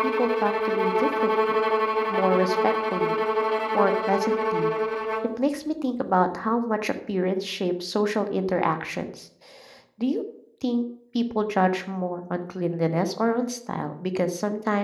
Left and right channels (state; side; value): identical; both; correlation 1.00